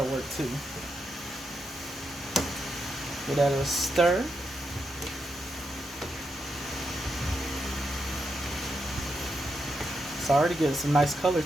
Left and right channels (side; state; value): both; normal; correlation 0.84